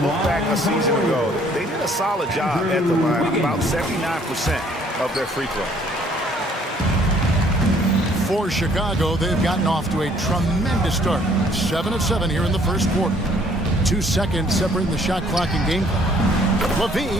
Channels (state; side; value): normal; both; correlation 0.60